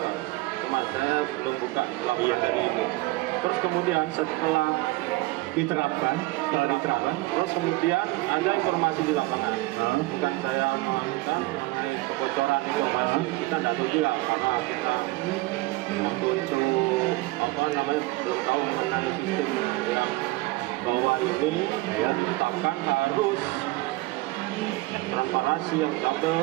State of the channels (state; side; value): quieter; left; 20.6 dB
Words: Cuma saya belum buka laporan dari ini. Terus kemudian setelah Diterapkan. terus kemudian ada informasi di lapangan. Bukan saya melakukan mengenai kebocoran informasi, kita tidak tahu juga karena kita waktu itu belum tahu mengenai sistem yang bahwa ini ditetapkan harus transparansi yang